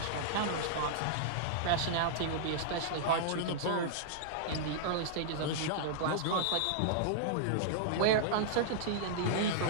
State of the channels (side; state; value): both; different; correlation -0.02